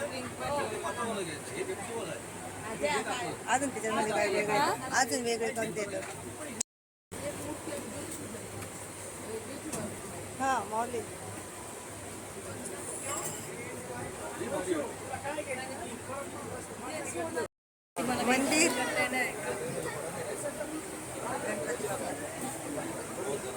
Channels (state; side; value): identical; both; correlation 1.00